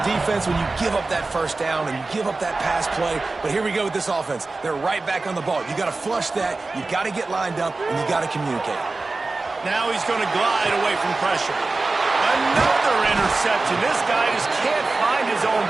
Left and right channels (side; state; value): left; quieter; 3.5 dB